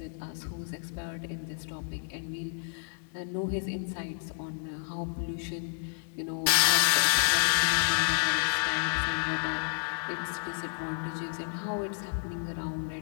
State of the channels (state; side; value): silent; right; digital silence